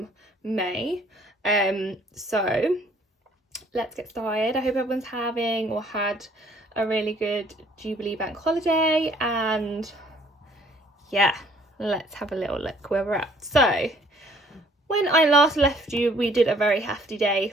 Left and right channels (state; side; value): normal; both; correlation 0.60